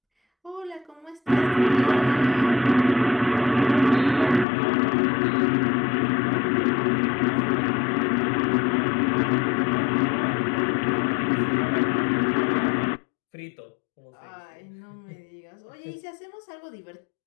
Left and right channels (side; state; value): right; drops out; at 4.5 s